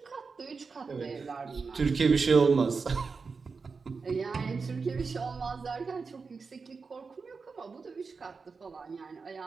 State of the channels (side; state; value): left; quieter; 4.8 dB